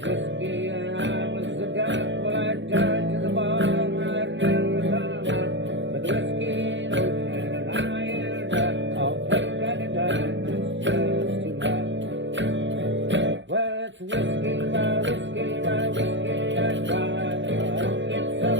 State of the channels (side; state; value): left; late; 0.54 ms